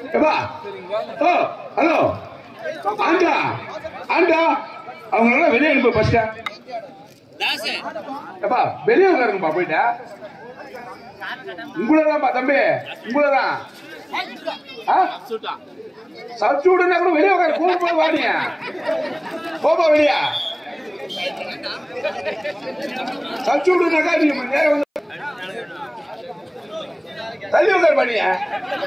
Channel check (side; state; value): both; identical; correlation 1.00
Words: ஏப்பா ஓ ஹலோ ஆண்டா ஆண்டா அவங்க வெளியே அனுப்ப ஃபர்ஸ்ட். ஏப்பா வெளியே உட்காருங்கப்பா போயிட்டா. உங்களதான்ப்பா தம்பி, உங்களதான். சப்ஸ்டியூட்னா கூட வெளியே உட்காரு. கூட்டு போய் வாடிங்க, போப்பா வெளியா. சப்ஸ்டியூட்னாக்கா நீங்க நேரம் வந்து தள்ளி உட்காரு பண்ணியா.